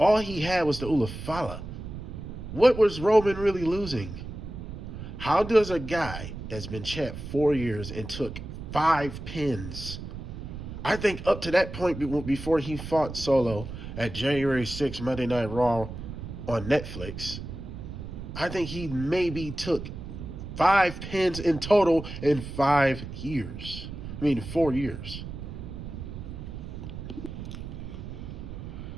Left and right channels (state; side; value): noise; right; rumble, 9 dB below the sound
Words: he had was the Ulafala. What was Roman really losing? How does a guy that's been champ 4 years and took 5 pins, I think up to that point before he fought Solo at January 6th Monday Night Raw on Netflix, I think he maybe took 5 pins in total in 5 years. I mean, 4 years.